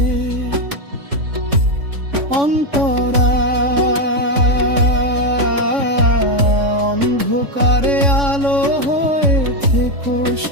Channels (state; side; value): late; left; 3.5 ms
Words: অন্তরা অন্ধকারে আলো হয়ে থেকো